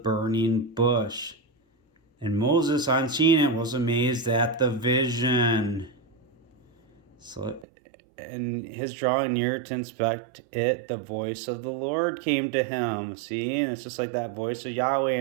bush. And Moses, on seeing it, was amazed at the vision. So, and his drawing near to inspect it, the voice of the Lord came to him. See, and it's just like that voice of Yahweh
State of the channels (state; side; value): drops out; left; at 7.7 s